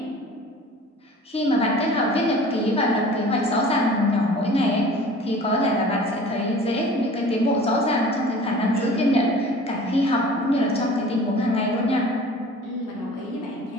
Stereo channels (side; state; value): both; normal; correlation 0.44